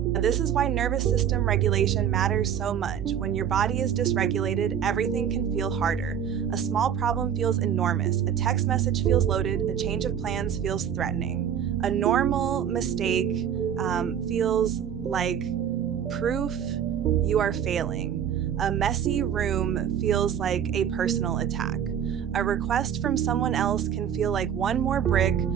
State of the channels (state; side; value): quieter; left; 8.8 dB